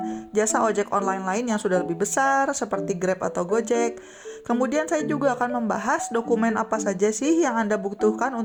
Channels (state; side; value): identical; both; correlation 1.00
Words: jasa ojek online lain yang sudah lebih besar, seperti Grab atau Gojek. Kemudian saya juga akan membahas dokumen apa saja sih yang Anda butuhkan